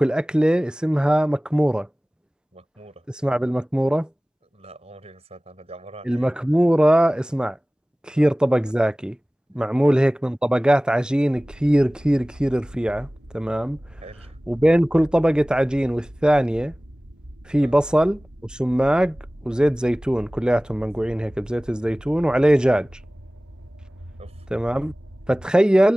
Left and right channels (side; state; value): both; normal; correlation 0.98